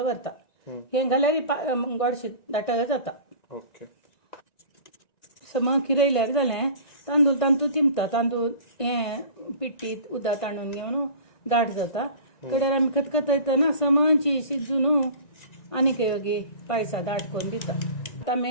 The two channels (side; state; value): right; late; 1.9 ms